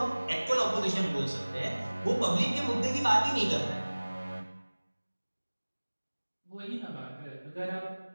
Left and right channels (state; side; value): inverted; both; correlation -1.00